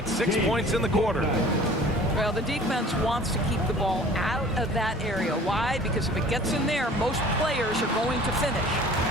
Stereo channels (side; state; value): both; normal; correlation 0.48